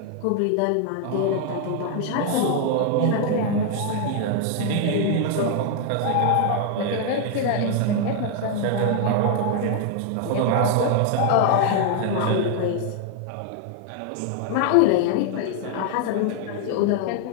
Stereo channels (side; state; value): both; different; correlation 0.00